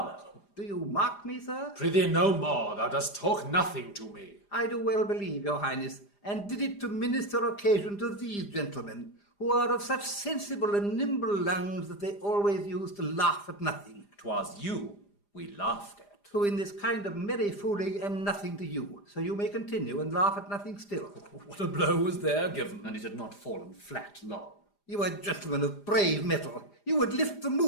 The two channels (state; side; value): late; right; 4.9 ms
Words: Do you mark me, sir? Prithee no more, thou dost talk nothing to me. I do well believe, your highness, and did it to minister occasion to these gentlemen, who are of such sensible and nimble lungs that they always use to laugh at nothing. 'Twas you we laughed at. Who in this kind of merry fooling am nothing to you, so you may continue and laugh at nothing still. What a blow was there given. And it had not fallen flat long. You are gentlemen of brave metal. You would lift the